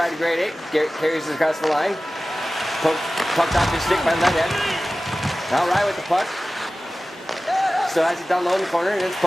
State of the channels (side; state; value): both; normal; correlation 0.96